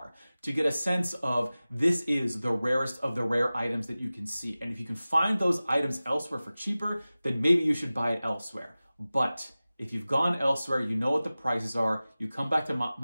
to get a sense of this is the rarest of the rare items that you can see. And if you can find those items elsewhere for cheaper, then maybe you should buy it elsewhere. But if you've gone elsewhere, you know what the prices are, you come back to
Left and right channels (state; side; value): inverted; both; correlation -0.97